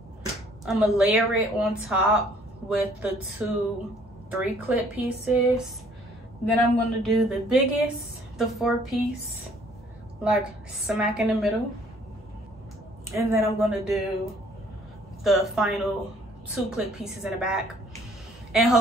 I'm gonna layer it on top with the 2 3-clip pieces. Then I'm gonna do the biggest, the 4-piece, like smack in the middle, and then I'm gonna do the final 2-clip pieces in the back, and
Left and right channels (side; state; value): both; normal; correlation 0.59